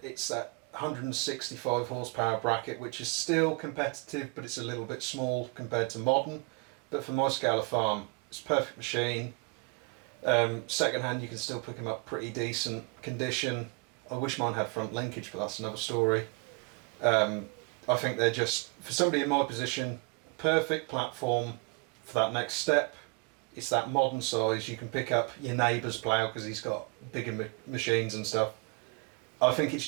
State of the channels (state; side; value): quieter; left; 31.2 dB